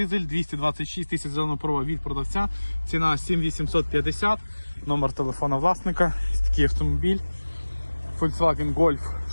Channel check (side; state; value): both; inverted; correlation -1.00